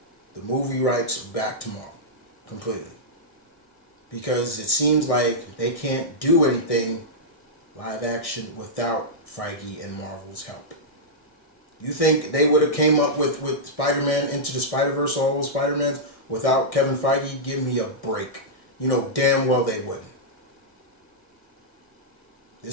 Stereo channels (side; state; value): right; late; 1.6 ms